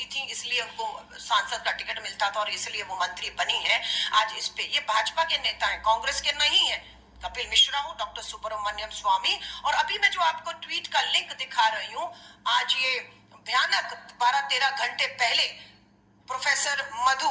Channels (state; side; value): identical; both; correlation 1.00